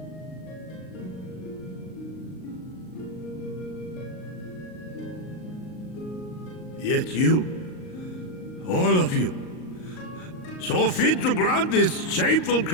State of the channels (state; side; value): late; right; 38 ms